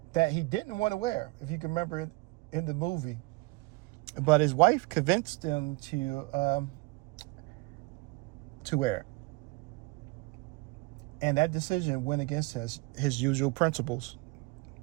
that he didn't want to wear, if you can remember it in the movie. But his wife convinced him to wear it. And that decision went against his usual principles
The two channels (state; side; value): quieter; left; 24.9 dB